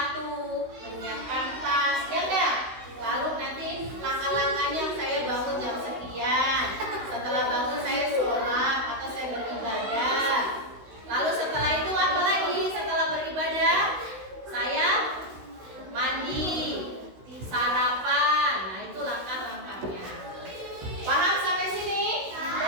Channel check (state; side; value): late; left; 16 ms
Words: menyiapkan tas, ya enggak? Lalu nanti langkah-langkahnya saya bangun jam sekian, setelah bangun saya sholat atau saya beribadah. Lalu setelah itu apa lagi? Setelah beribadah saya mandi, sarapan. Nah itu langkah-langkahnya. Paham sampai sini?